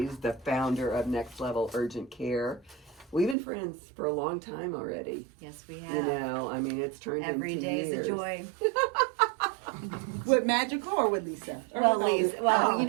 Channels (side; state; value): left; drops out; at 3.4 s